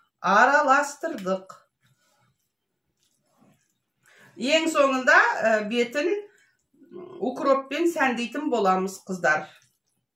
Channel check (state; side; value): identical; both; correlation 1.00